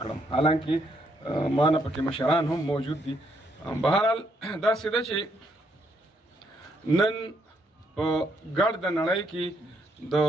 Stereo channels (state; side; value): normal; both; correlation 0.73